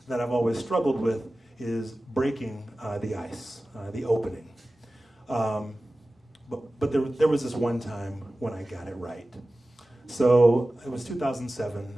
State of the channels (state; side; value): normal; both; correlation 0.96